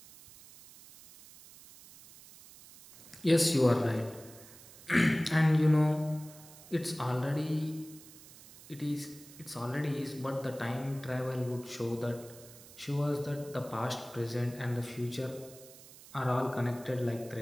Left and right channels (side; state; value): right; noise; hiss, 20 dB below the sound